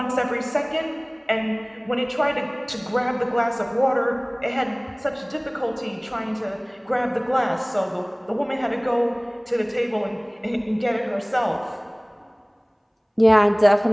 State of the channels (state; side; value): identical; both; correlation 1.00